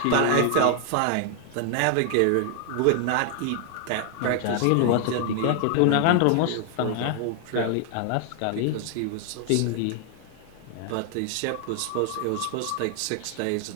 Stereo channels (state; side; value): different; both; correlation 0.00